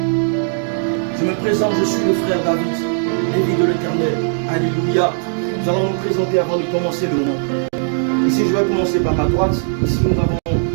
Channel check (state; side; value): silent; left; digital silence